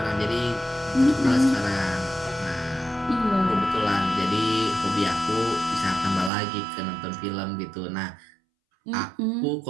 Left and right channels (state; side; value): drops out; left; at 6.3 s